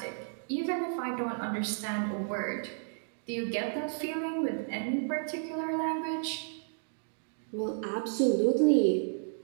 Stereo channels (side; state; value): left; silent; digital silence